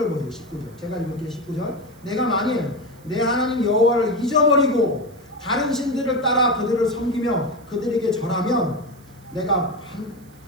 보세요. 19절. 제가 읽을게요. 19절. 내가 만일 내 하나님 여호와를 잊어버리고 다른 신들을 따라 그들을 섬기며 그들에게 절하면 내가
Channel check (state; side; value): noise; right; hiss, 28 dB below the sound